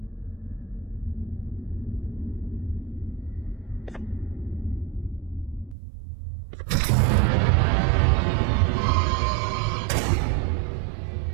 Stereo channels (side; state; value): left; drops out; at 5.8 s